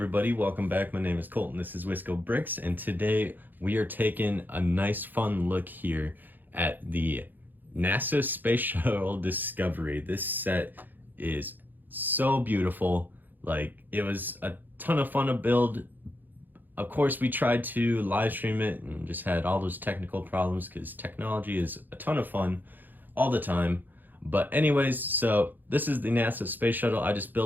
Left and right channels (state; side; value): late; left; 0.087 ms